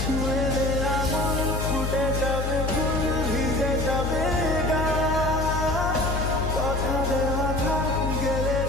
দে আগুন, ফুটে যাবে ফুল, ভিজে যাবে গা। কথা দেওয়া থাক, গেলে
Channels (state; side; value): noise; left; hum, 1 dB below the sound